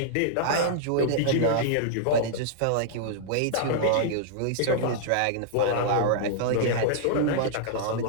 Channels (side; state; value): both; different; correlation -0.02